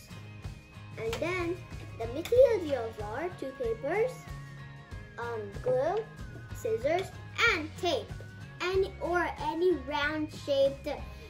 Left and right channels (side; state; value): both; identical; correlation 1.00